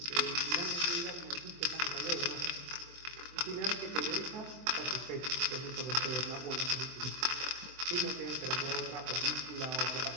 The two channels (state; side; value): late; left; 23 ms